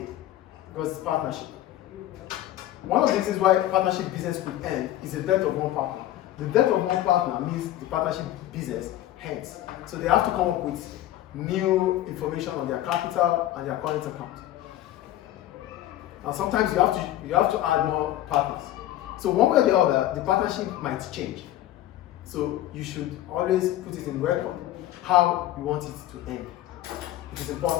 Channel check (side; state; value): right; quieter; 13.7 dB